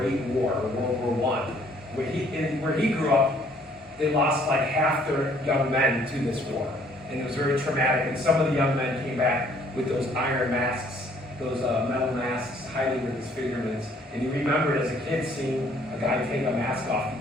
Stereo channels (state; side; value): normal; both; correlation 0.61